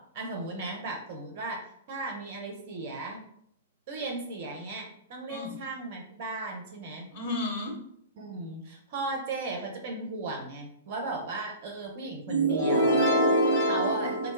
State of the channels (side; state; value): both; inverted; correlation -0.39